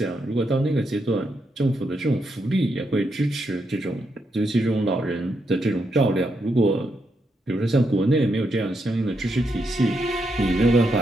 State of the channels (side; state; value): both; normal; correlation 0.81